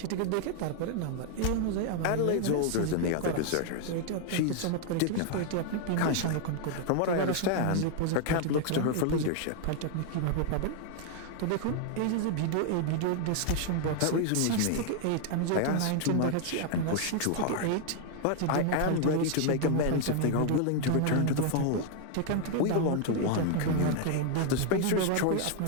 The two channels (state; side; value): different; both; correlation 0.00